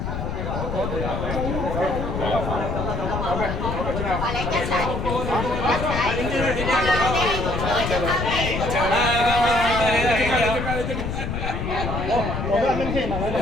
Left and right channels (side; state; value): left; noise; rumble, 3 dB below the sound